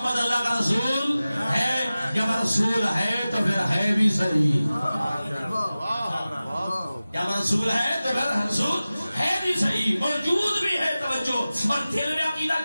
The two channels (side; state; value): both; inverted; correlation -0.96